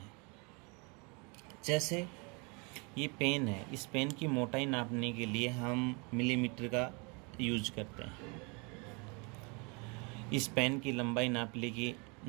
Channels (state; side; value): quieter; left; 31.2 dB